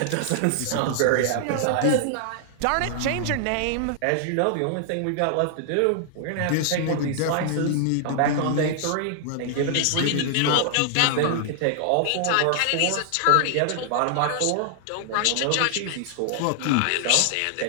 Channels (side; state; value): both; different; correlation 0.00